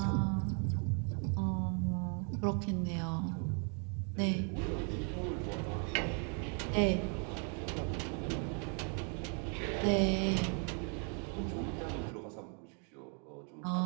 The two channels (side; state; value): left; quieter; 39.7 dB